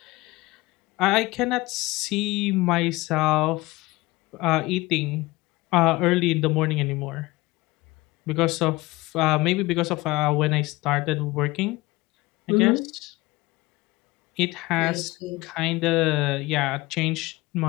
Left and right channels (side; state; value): right; quieter; 20.9 dB